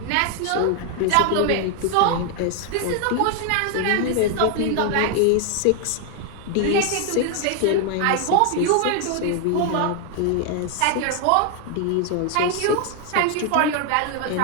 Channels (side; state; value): both; different; correlation 0.00